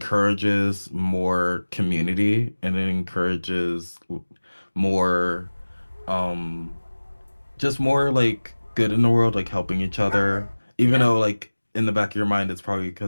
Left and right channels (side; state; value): both; inverted; correlation -1.00